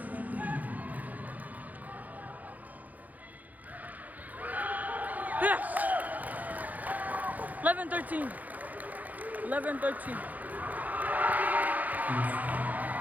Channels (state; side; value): late; left; 0.080 ms